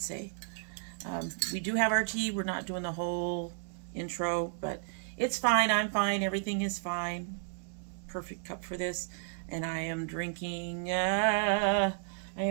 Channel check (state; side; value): silent; left; digital silence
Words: say, we do have our tea. We're not doing the whole intro, but it's fine. I'm fine. Everything is fine. Perfect cup for this. And I am drinking my